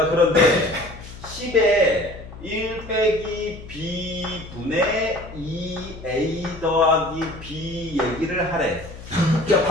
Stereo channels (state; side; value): noise; left; hum, 15 dB below the sound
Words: 그런데 10에 1 빼기 B분의 2A 더하기 B 얘기를 하래. 자,